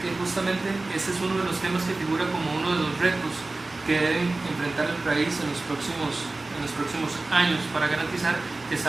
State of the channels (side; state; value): left; quieter; 3.2 dB